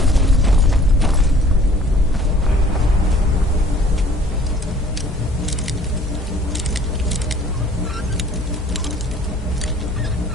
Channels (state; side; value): normal; both; correlation 0.54